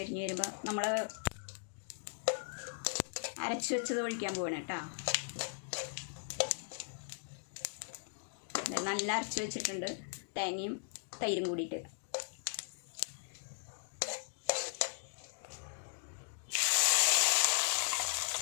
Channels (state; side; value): silent; right; digital silence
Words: വരുമ്പോൾ നമ്മൾ അരച്ച് വെച്ചത് ഒഴിക്കാൻ പോവാണ് കേട്ടോ. നല്ല അരച്ച് വെച്ചിട്ടുണ്ട്, തേങ്ങയും തൈരും കൂടിയിട്ട്.